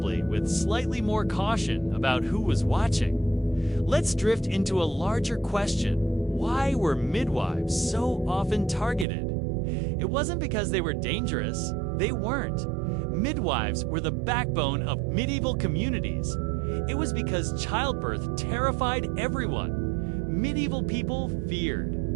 with slightly more caution about who was watching. Let's drift into a larger question. Why were midwives so often targeted? It wasn't because they were dangerous. They weren't. Midwives were the backbone of medieval communities. It was because childbirth terrified everyone. Medieval people feared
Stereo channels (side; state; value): left; drops out; at 9.1 s